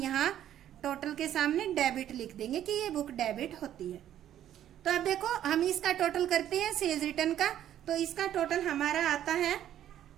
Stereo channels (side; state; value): left; quieter; 11.3 dB